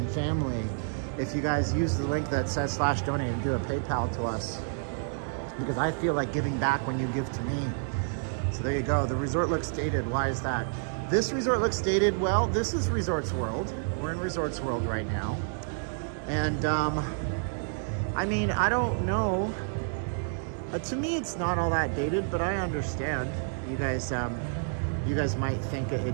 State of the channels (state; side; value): silent; left; digital silence